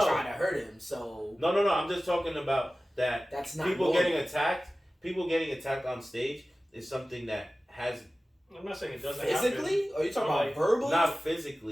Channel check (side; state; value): both; normal; correlation 0.96